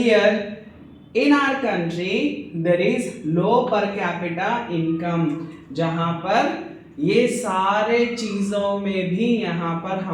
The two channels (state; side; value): identical; both; correlation 1.00